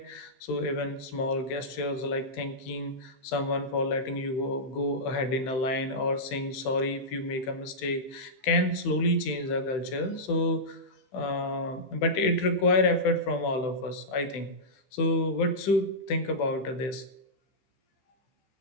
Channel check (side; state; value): right; late; 15 ms